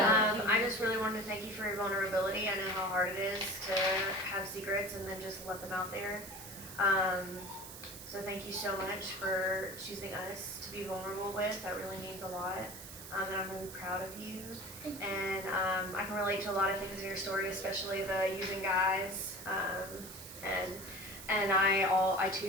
I just really wanted to thank you for your vulnerability. I know how hard it is to have secrets and then just let them out there. So thank you so much for choosing us to be vulnerable with. That really means a lot. And I'm really proud of you. And I can relate to a lot of things in your story, especially the using guys. And I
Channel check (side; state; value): right; noise; hiss, 12 dB below the sound